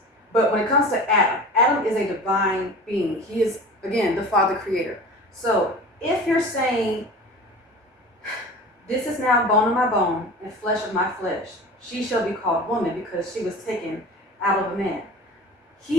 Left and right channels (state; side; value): normal; both; correlation 0.36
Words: But when it comes to Adam is a divine being. He is, again, the Father Creator. So if you're saying, this is now bone of my bone and flesh of my flesh, she shall be called woman because she was taken out of a man.